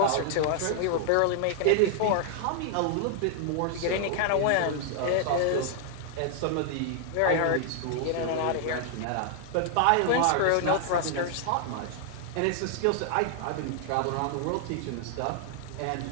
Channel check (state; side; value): different; both; correlation 0.00